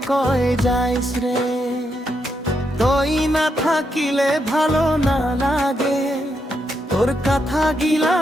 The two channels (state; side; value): normal; both; correlation 0.81